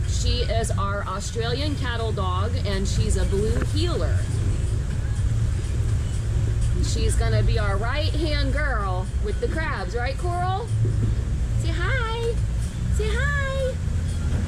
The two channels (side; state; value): both; identical; correlation 1.00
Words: She is our Australian cattle dog and she's a blue heeler. She's gonna be our right-hand girl with the crabs, right, Coral? Say hi. Say hi.